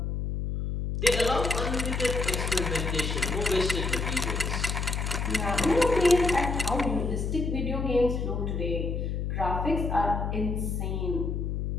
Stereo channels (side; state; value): left; noise; hum, 1 dB below the sound